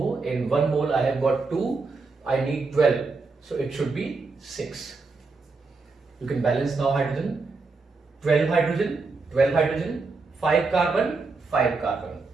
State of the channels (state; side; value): quieter; left; 4.0 dB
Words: In 1 mole I have got 2, I need 12, so it should be 6. You can balance now hydrogen, 12 hydrogen, 12 hydrogen, 5 carbon, 5 carbon.